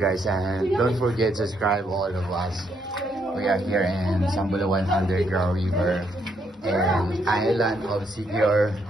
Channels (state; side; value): normal; both; correlation 0.74